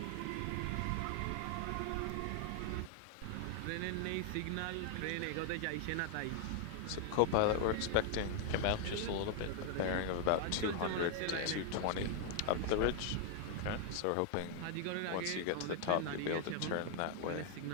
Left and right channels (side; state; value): both; different; correlation 0.00